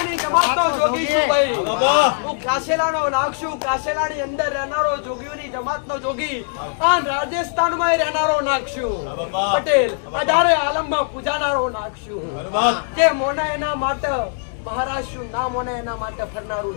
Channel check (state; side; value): silent; right; digital silence